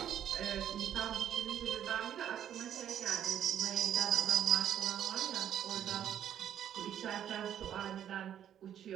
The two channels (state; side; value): quieter; left; 10.1 dB